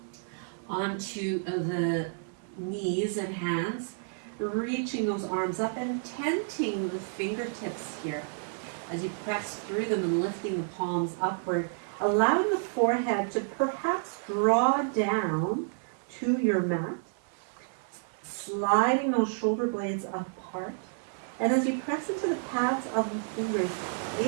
onto the knees and hands, reaching those arms up and tenting the fingertips here as you press through them and lifting the palms upward, allowing the forehead to perhaps draw down to your mat, sliding those shoulder blades apart. And as you press into the pads of the fingers,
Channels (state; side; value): silent; left; 58 dB below the other